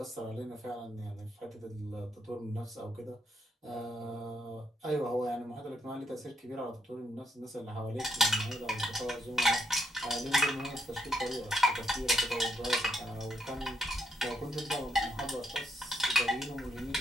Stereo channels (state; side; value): normal; both; correlation 0.77